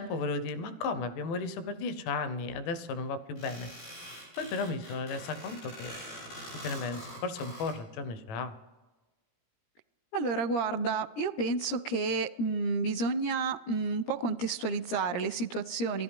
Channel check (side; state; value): right; late; 17 ms